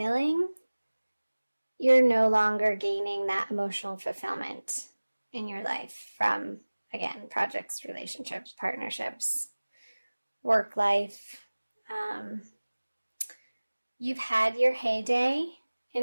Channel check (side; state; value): both; inverted; correlation -1.00